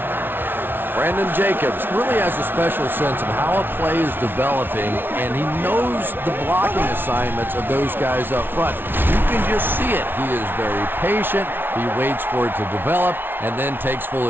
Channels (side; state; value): left; late; 0.10 ms